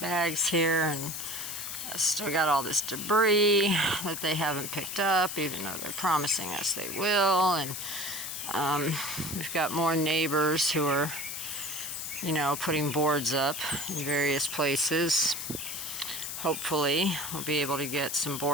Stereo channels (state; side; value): noise; left; hiss, 6 dB below the sound